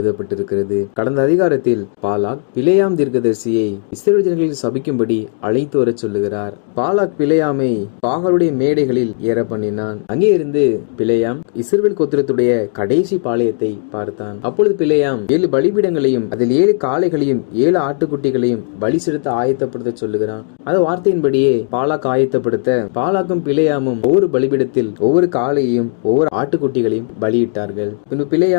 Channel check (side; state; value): right; silent; 58 dB below the other